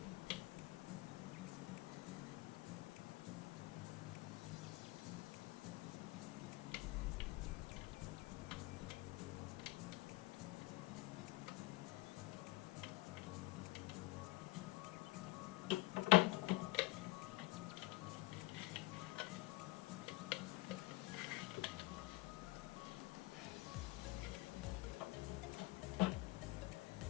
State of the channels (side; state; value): right; quieter; 20.9 dB